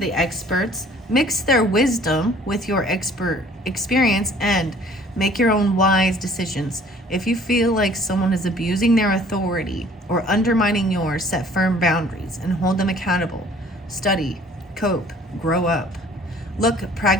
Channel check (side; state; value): both; normal; correlation 0.54